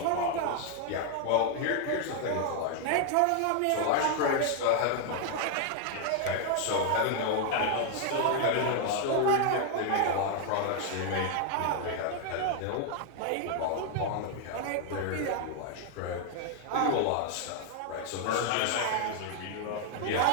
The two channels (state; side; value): different; both; correlation 0.00